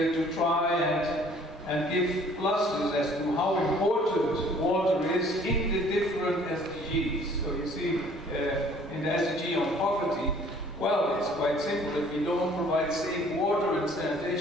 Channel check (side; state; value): both; normal; correlation 0.56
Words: to try and give clusters as to how important water is in the different SDGs. So you see, in the SDG on poverty, well, it's quite simple. If we don't provide safe water and